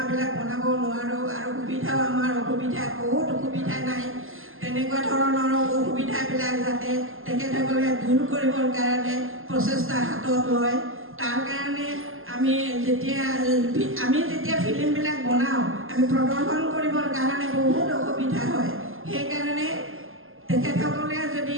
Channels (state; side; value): late; left; 0.60 ms